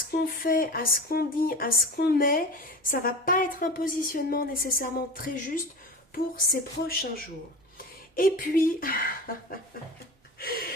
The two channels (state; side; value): normal; both; correlation 0.32